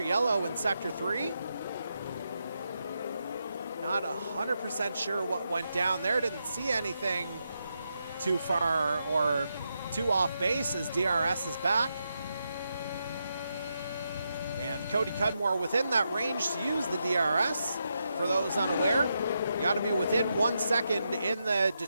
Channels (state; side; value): inverted; both; correlation -0.84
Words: yellow in Sector 3. Not 100% sure what went down there. Didn't see anything too far or too off base, as DRS is back. And Cody Cudmore within that range to use the DRS. For those unaware, you got to be within 1 second in the